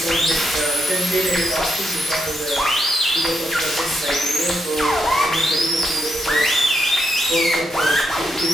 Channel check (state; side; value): normal; both; correlation 0.80